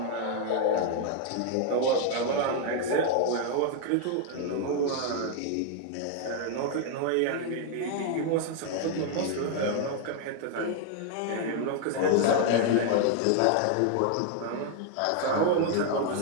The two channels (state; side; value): different; both; correlation 0.00